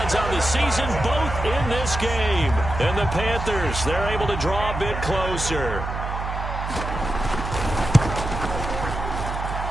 on the season, both in this game. And the Panthers, they're able to draw a bit closer.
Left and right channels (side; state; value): right; noise; hum, 5 dB below the sound